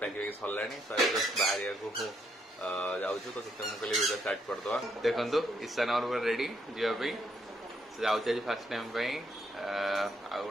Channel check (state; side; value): normal; both; correlation 0.74